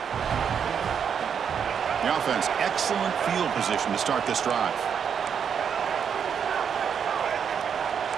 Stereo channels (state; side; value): quieter; left; 7.4 dB